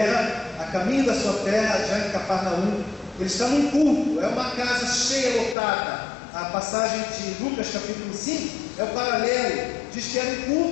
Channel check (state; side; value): drops out; right; at 5.6 s